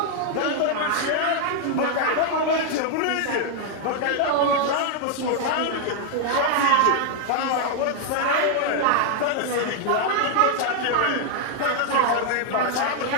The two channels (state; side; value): different; both; correlation 0.00